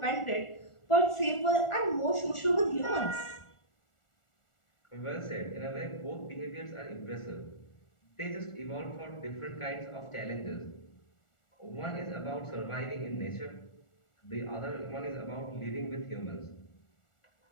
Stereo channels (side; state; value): right; late; 1.4 ms